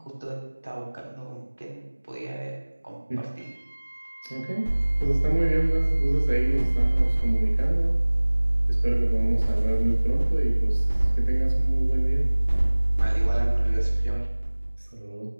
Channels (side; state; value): both; inverted; correlation -1.00